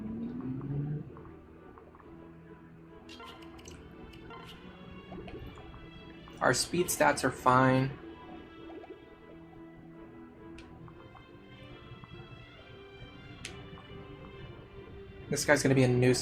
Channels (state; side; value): identical; both; correlation 1.00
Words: Our speed stats are fine. This guy's gonna be a